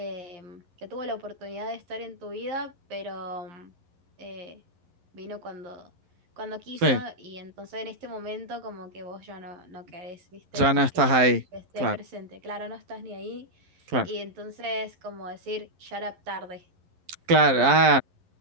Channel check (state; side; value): late; left; 11 ms